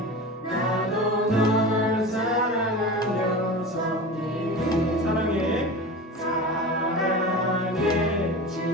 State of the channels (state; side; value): normal; both; correlation 0.31